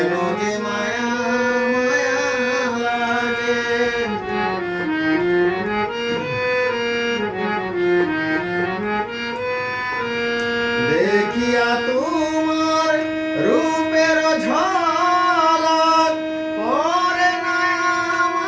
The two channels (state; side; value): identical; both; correlation 1.00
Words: যে মায়া মায়া লাগে। দেখিয়া তোমার রূপের ঝলক পড়ে না